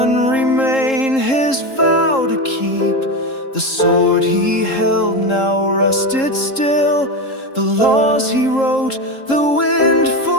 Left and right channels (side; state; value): right; late; 3.7 ms